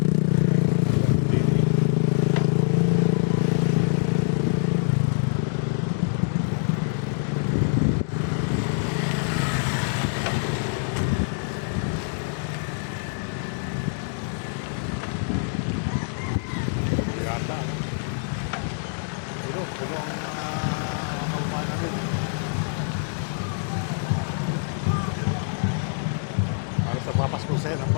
Yata, ano? Puno ang mga kababayan natin. Halos nagpapasko sa'yo, ang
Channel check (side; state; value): right; silent; digital silence